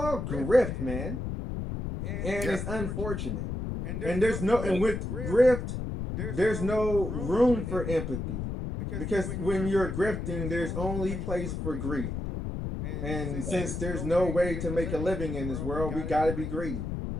grift, man. And it's unfortunate. And there's no, and with grift, there's no room for empathy, because when you're grifting, there's only place for greed. And since there's no way to make a living in this world, we got to be greedy.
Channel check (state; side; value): noise; left; rumble, 4 dB below the sound